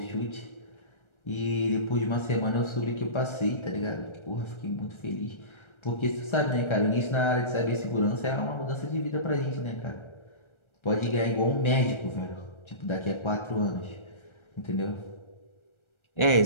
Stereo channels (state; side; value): late; right; 1.3 ms